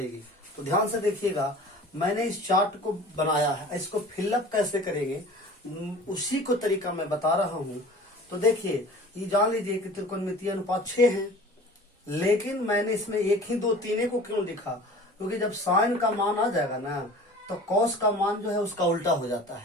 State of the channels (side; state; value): both; normal; correlation 0.43